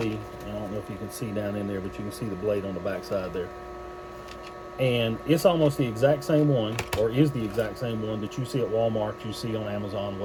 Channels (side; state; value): both; identical; correlation 1.00